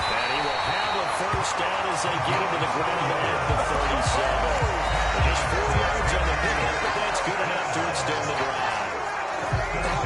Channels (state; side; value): identical; both; correlation 1.00